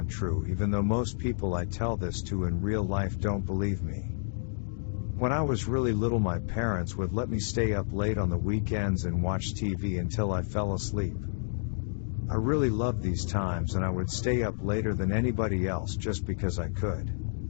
true even though most people I tell this to in real life don't believe me. When I was really little, my parents would let me stay up late on the weekends and watch TV until I fell asleep. I really loved these times and I would stay up later than anybody else just because I could.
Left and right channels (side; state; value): right; silent; digital silence